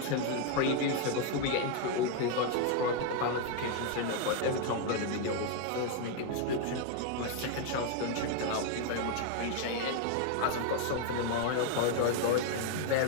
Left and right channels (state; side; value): different; both; correlation 0.00